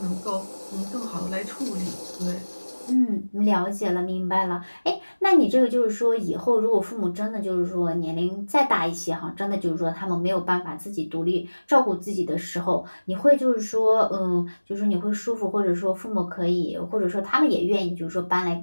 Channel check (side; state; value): both; inverted; correlation -1.00